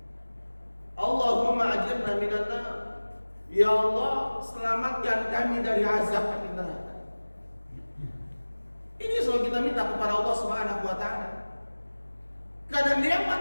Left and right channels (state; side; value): inverted; both; correlation -1.00